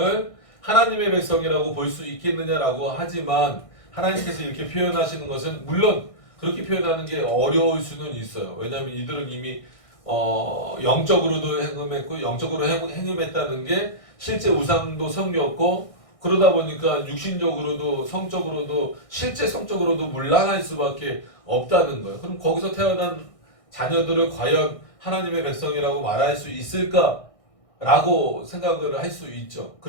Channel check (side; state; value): right; late; 1.6 ms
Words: 하나님의 백성이라고 볼 수 있겠느냐라고 하지만 하나님께서 이렇게 표현하시는 것은 물론 그렇게 표현하는 게 어려울 수는 있어요. 왜냐하면 이들은 이미 영적으로도 행음했고 영적으로 행음했다는 게 실제 우상도 섬겼고 그러다 보니까 육신적으로도 성적으로도 실제 성적으로도 문란할 수밖에 없다는 거예요. 그럼 거기서 태어난 자녀들을 과연 하나님의 백성이라고 말할 수 있을까라고 생각을 할 수 있죠.